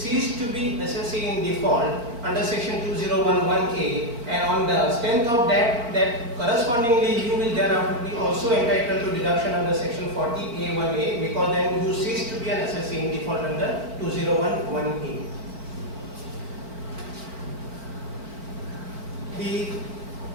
to be assessee in default under section 201(1)(a), and on the strength of that correspondingly you will thereafter be also entitled to deduction under section 40A1(a), because then you cease to be an assessee in default under 201(1)(a). The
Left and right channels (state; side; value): late; left; 4.4 ms